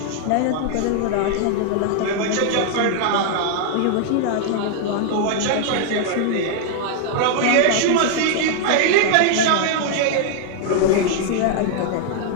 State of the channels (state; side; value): different; both; correlation 0.00